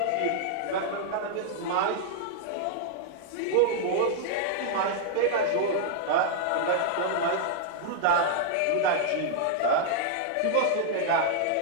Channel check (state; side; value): different; both; correlation -0.01